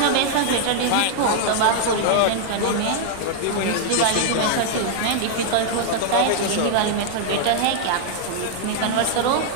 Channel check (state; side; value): different; both; correlation -0.01